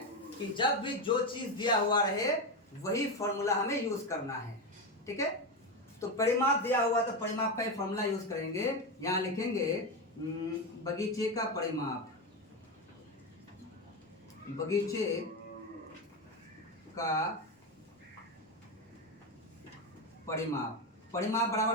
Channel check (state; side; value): normal; both; correlation 0.13